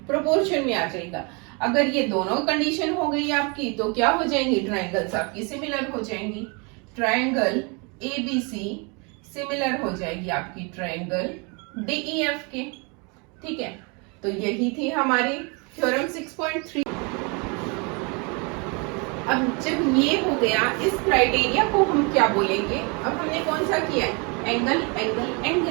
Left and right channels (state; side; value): quieter; left; 31.8 dB